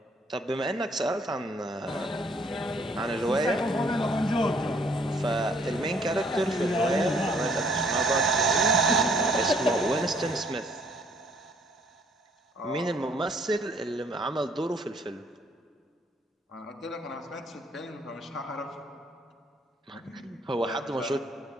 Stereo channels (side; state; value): both; normal; correlation 0.63